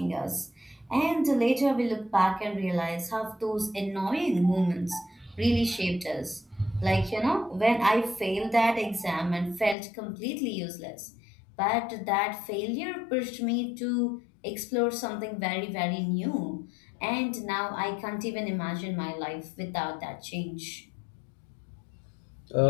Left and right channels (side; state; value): right; drops out; at 9.8 s